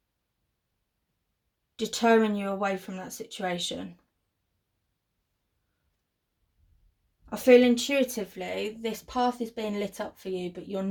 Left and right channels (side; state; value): both; identical; correlation 1.00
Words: deterring you away from that situation. I feel intuitively this path is being lit up for you, but you're